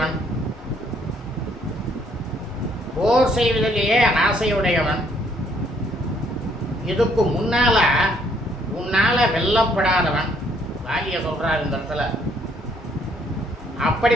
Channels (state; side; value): normal; both; correlation 0.66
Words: போர் செய்வதிலேயே ஆசையுடையவன், இதுக்கு முன்னால உன்னால வெல்லப்படாதவன். வாலிய சொல்றார் இந்த இடத்துல.